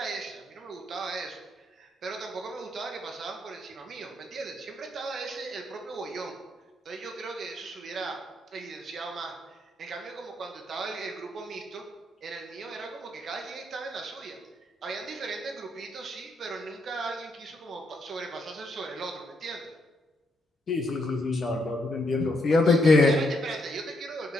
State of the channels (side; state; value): both; normal; correlation 0.76